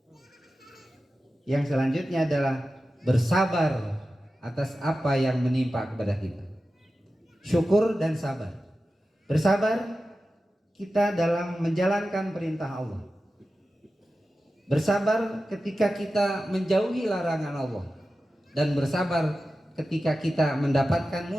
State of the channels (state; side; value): normal; both; correlation 0.93